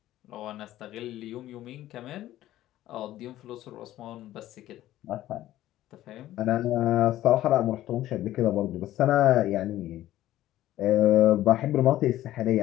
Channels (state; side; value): quieter; right; 14.2 dB